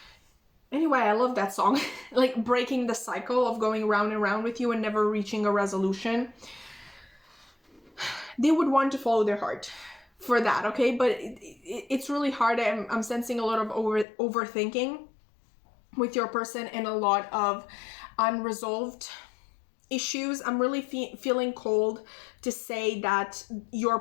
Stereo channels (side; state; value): right; drops out; at 14.1 s